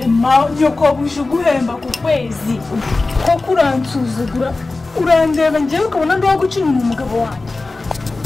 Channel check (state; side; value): quieter; right; 3.4 dB